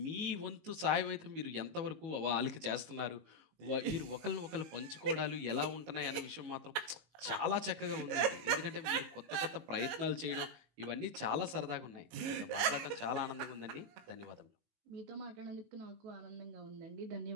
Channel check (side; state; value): left; late; 18 ms